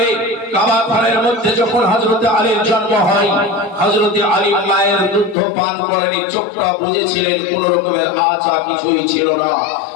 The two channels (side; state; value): right; drops out; at 5.4 s